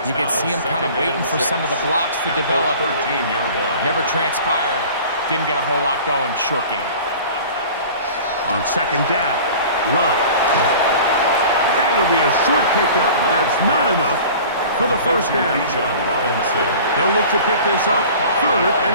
You could see him kind of waiting for some of the blocks to develop. Never transpired. Didn't get a whole lot going. Short game. On second down, Love. And it'll be a short pickup. That's not enough for the first down. They'll look to pick this up, third and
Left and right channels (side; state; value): both; inverted; correlation -0.42